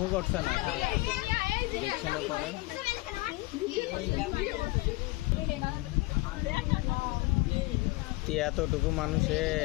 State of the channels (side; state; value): right; quieter; 21.8 dB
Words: করছে না, দেখছে না পরে। তুই এতটুকু মানুষে